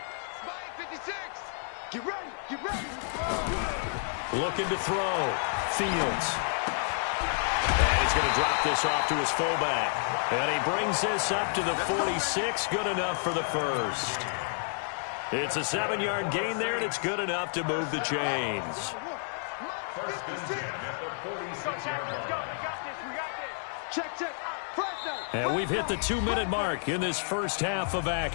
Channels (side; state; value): right; silent; digital silence